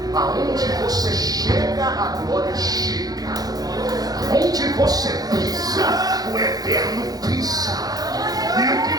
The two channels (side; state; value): left; late; 0.18 ms